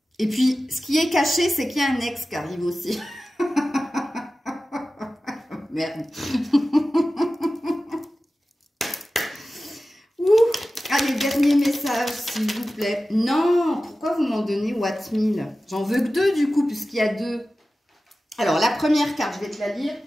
Et puis, ce qui est caché, c'est qu'il y a un ex qui arrive aussi. Merde. Allez, dernier message, s'il vous plaît. Non, pourquoi vous m'en donnez What 1000? J'en veux que 2 du coup, puisqu'il y a 2. Alors, la première carte, je vais te la lire.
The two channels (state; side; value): normal; both; correlation 0.95